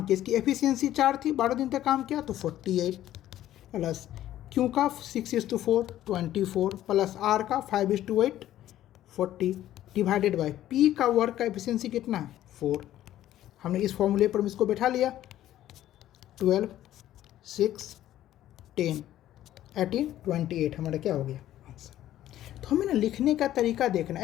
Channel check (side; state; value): right; quieter; 13.0 dB